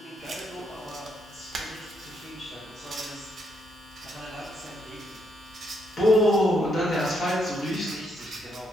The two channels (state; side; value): normal; both; correlation 0.76